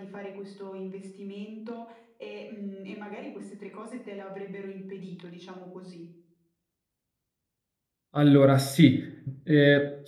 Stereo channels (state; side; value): identical; both; correlation 1.00